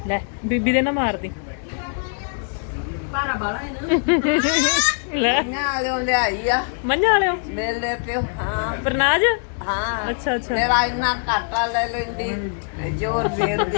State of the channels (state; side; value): silent; right; 59 dB below the other